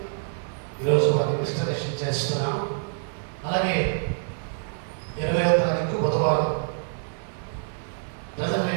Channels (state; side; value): silent; left; digital silence